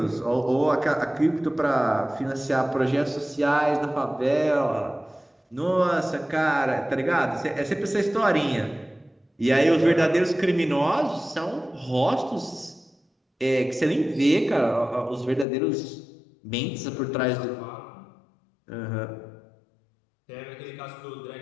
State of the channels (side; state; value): right; drops out; at 15.5 s